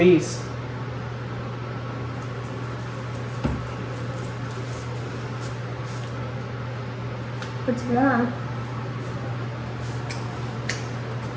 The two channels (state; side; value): identical; both; correlation 1.00